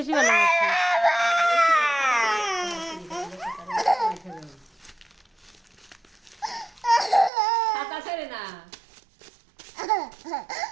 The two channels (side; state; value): left; drops out; at 7.3 s